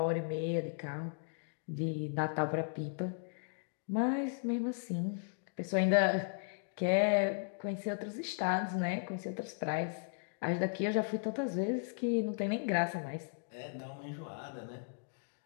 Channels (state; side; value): silent; right; digital silence